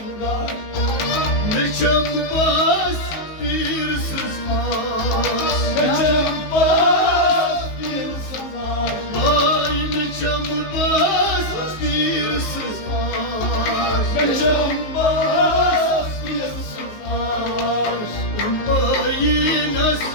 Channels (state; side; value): late; right; 19 ms